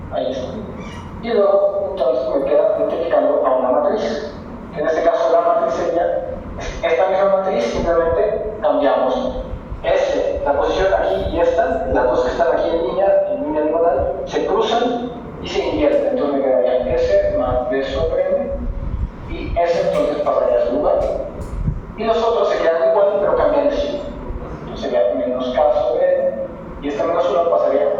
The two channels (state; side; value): identical; both; correlation 1.00